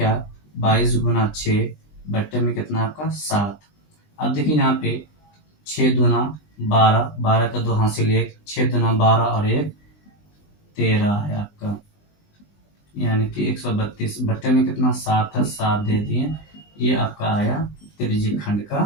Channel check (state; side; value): late; right; 20 ms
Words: 22 गुना 6 बट्टे में कितना आपका 7। अब देखिए यहाँ पे 6 दूना 12, 12 का 2 हासिल 1, 6 दूना 12 और 1 13 है आपका, यानी कि 132 बट्टे में कितना 7 है, 7 दे दिए। ये आपका आया त्रिज्यखंड